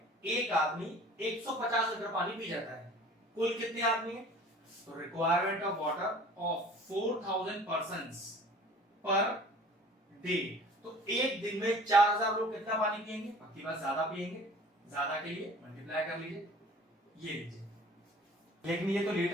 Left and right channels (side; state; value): both; normal; correlation 0.46